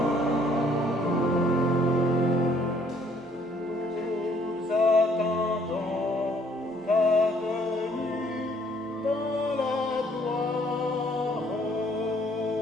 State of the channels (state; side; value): normal; both; correlation 0.62